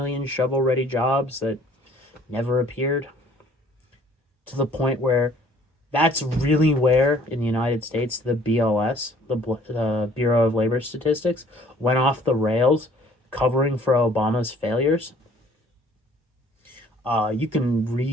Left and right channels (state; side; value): normal; both; correlation 0.56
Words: shovel-ready jobs that never appeared. To the point where that's really where, in the United States, the BLS, the Bureau of Labor Statistics, went off the rails, covering for Obama's failures. You can